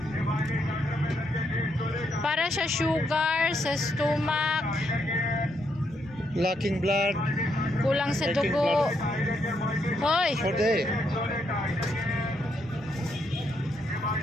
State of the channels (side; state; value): both; normal; correlation 0.77